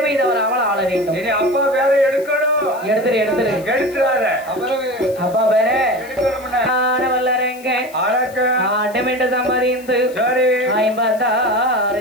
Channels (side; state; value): left; noise; hiss, 22 dB below the sound